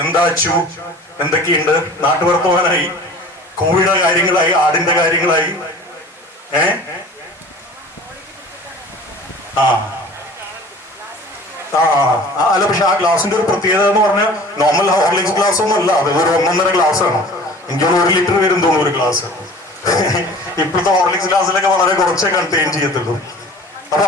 എന്താ അച്ചു, എന്തൊക്കെയുണ്ട്, നാട്ടുവർത്തമാനായി, കോഴിയുടെ കാര്യങ്ങളായി, ആടിന്റെ കാര്യങ്ങളായി, അല്ല. പക്ഷെ ആ ഗ്ലാസിന്റെ ഒരു പ്രത്യേകത എന്ന് പറഞ്ഞാൽ നോർമൽ ഹോർലിക്സ് ഗ്ലാസ് ഒന്നും അല്ല, അത് ഒരു 1.5 ഗ്ലാസ് ആണ്. എനിക്കൊരു 1 ലിറ്റർ വരും തോന്നുന്നു ഒരു ഗ്ലാസ്. ഇപ്പോഴത്തെ ഹോർലിക്സ് ഗ്ലാസ്സിലൊക്കെ വളരെ കുറച്ചേ കണ്ടെയ്ൻ ചെയ്യത്തുള്ളൂ. അപ്പൊ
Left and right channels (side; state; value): both; normal; correlation 0.44